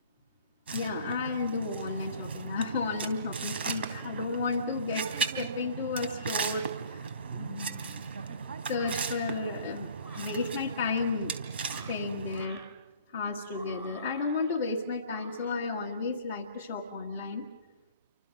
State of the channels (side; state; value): both; inverted; correlation -0.50